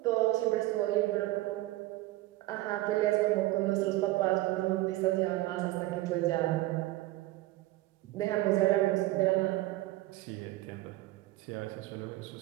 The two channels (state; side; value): quieter; left; 17.8 dB